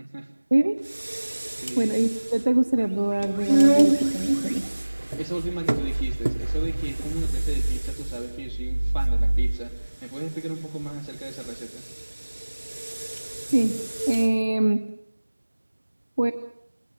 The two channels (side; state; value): both; inverted; correlation -1.00